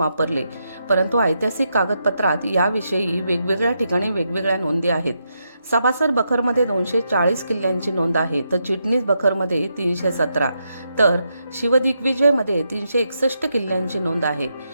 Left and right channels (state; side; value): inverted; both; correlation -0.82